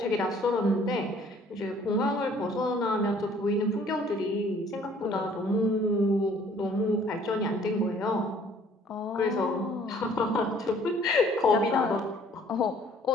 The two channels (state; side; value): normal; both; correlation 0.57